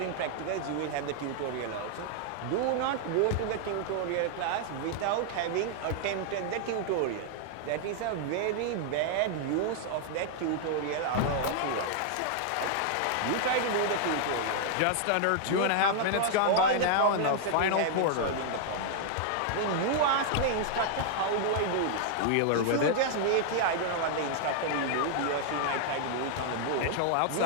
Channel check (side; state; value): both; different; correlation -0.01